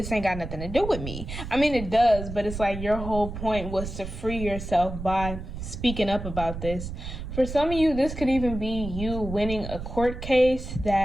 ain't got nothing to do with me. I mean, it does, but it's like your whole point was to free yourself by speaking up about this. For some of you, this could even be you winning a court case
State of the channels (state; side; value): noise; right; rumble, 8 dB below the sound